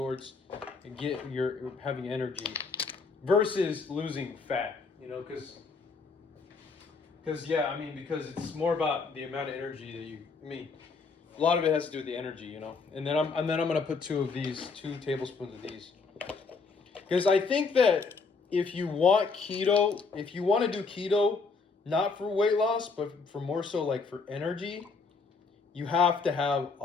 and get your having energy versus losing fat. You know, because yeah, I mean, because it's more about the amount of energy that you. I mean, a lot of it has to do with the energy, you know. And then I'm gonna put 2 tablespoons of these, because I think that if you want to do keto, not for weight loss, but for more so like for energy, you have to have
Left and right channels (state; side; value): quieter; right; 4.6 dB